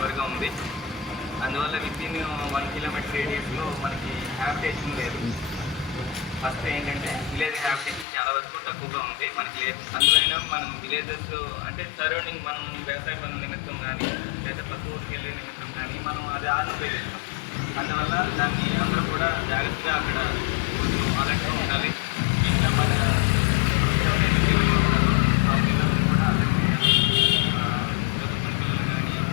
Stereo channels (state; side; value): drops out; right; at 8.1 s